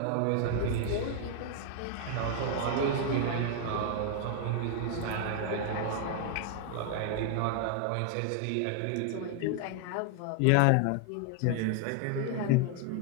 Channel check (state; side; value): different; both; correlation 0.00